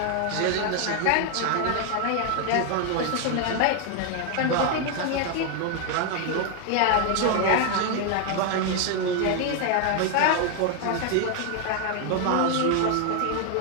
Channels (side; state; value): both; different; correlation 0.01